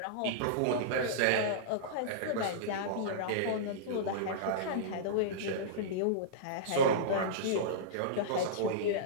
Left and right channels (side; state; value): both; different; correlation -0.03